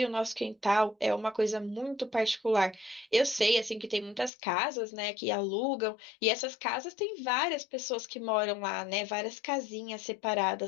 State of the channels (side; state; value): right; drops out; at 4.3 s